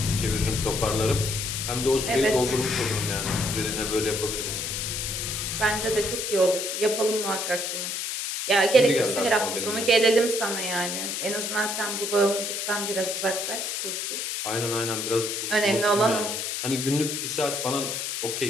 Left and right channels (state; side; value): noise; left; hiss, 3 dB below the sound